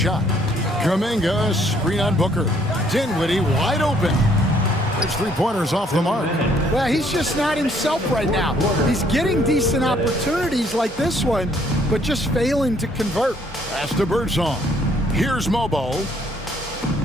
Kuminga, screen on Booker. Dinwiddie wide open. There's 3-pointers off the mark. Well, he's just not himself right now. He's getting decent opportunities like this one, but just failing to convert. Pass to Birdsong. Here's Mobo.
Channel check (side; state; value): both; normal; correlation 0.65